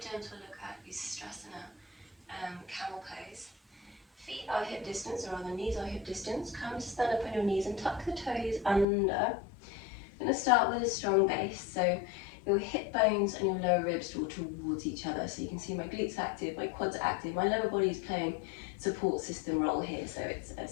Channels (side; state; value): right; drops out; at 8.8 s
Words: gentle look at Ustrasana, camel pose. Feet are hip distance, or rather knees are hip distance. Come to stand up on your knees and tuck the toes under. I'm going to start with a strong base, so your hip bones and your lower ribs draw towards each other. So you can see my glutes active, my quads are active, my lower body is playing support system role here, so